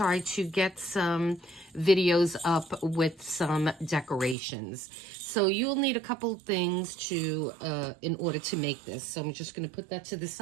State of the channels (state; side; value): drops out; left; at 4.4 s